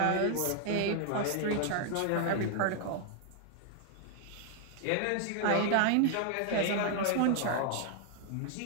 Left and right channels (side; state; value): both; different; correlation 0.00